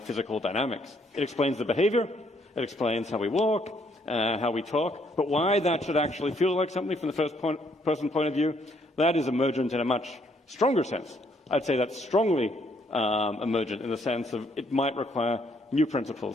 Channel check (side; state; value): both; normal; correlation 0.69